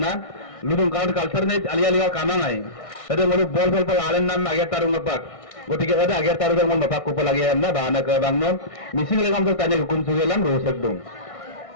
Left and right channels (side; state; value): right; late; 1.6 ms